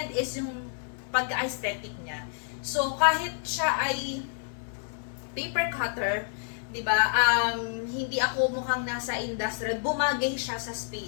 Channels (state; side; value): silent; right; 59 dB below the other